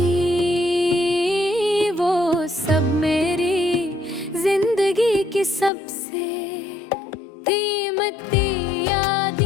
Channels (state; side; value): drops out; right; at 5.7 s